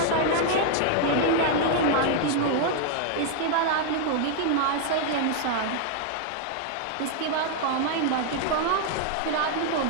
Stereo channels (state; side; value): different; both; correlation 0.00